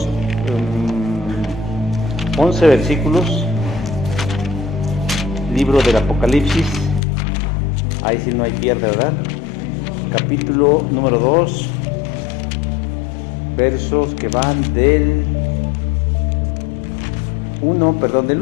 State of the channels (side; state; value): right; drops out; at 7.0 s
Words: 11 versículos, libro del Apocalipsis, ahí sí no hay pierde, ¿verdad? Capítulo número 2, versos que van del 1